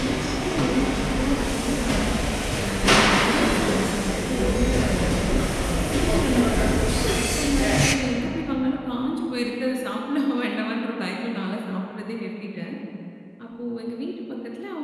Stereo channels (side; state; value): both; identical; correlation 1.00